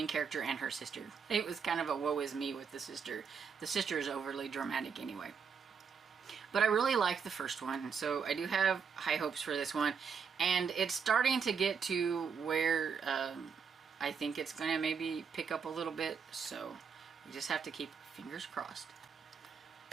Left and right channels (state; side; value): quieter; left; 6.3 dB